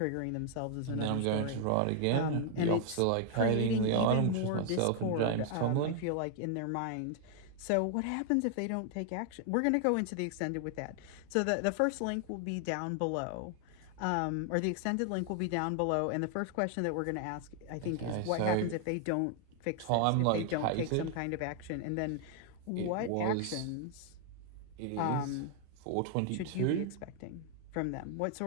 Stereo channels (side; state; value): both; different; correlation 0.00